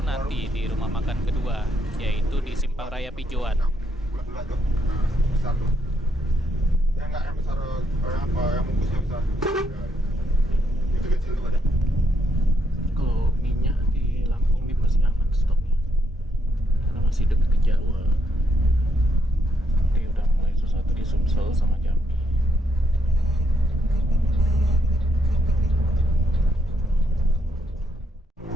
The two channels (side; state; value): both; normal; correlation 0.74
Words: nanti di rumah makan kedua, yaitu di Simpang Raya Pijoan. Bulat-bulat tuh. Besar tuh. Yang enggak yang besar yang apa yang bungkusnya besar. Itu kecil tuh ada. Kalau minyak di Lampung ini masih aman stoknya karena masih dekat ke Jawa. Ini udah mulai sesuatu di Sumsel sama Jambi.